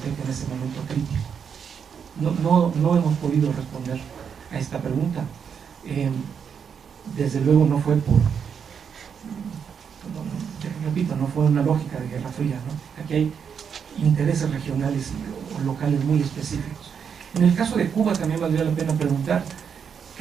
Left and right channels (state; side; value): quieter; left; 7.1 dB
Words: en ese momento crítico? No hemos podido responder a esta pregunta. Desde luego no fue repito, no fue una lógica de Guerra Fría, ¿no? Aquí hay intereses regionales o locales muy específicos. En el caso de Cuba también valdría la pena preguntar